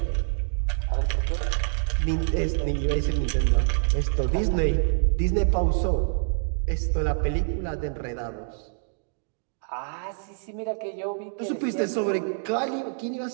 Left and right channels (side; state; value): left; silent; digital silence